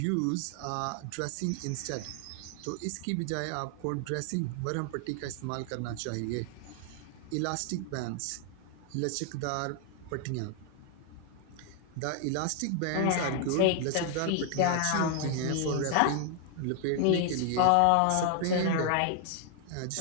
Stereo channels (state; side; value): different; both; correlation 0.00